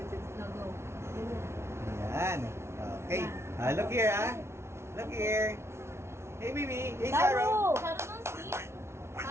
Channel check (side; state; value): left; late; 0.13 ms